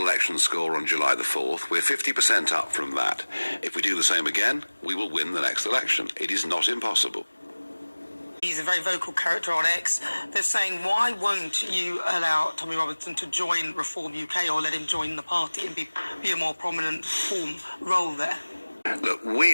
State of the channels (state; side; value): inverted; both; correlation -1.00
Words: score on July the 4th, we're 50% up from that. If we do the same again, we will win the next election. It is not impossible. He's a very vocal character on X. They're saying, why won't you allow Tommy Robinson to join Reform UK or let him join the party and be a more prominent role there? Look,